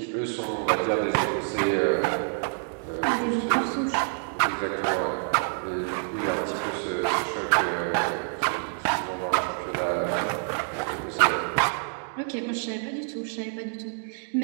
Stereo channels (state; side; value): silent; left; 60 dB below the other